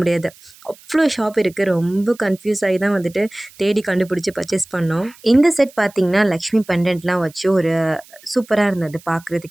அவ்வளோ ஷாப் இருக்குது. ரொம்ப கன்ஃபியூஸ் ஆகி தான் வந்துட்டு தேடி கண்டுபிடிச்சி பர்ச்சேஸ் பண்ணோம். இந்த செட் பார்த்திங்கன்னா லக்ஷ்மி பெண்டன்ட்லாம் வச்சு ஒரு சூப்பராக இருந்தது.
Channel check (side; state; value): right; noise; hiss, 24 dB below the sound